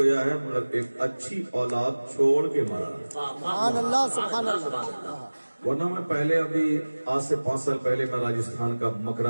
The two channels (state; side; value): inverted; both; correlation -1.00